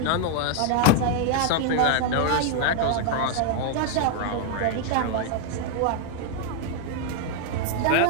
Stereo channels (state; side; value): different; both; correlation 0.00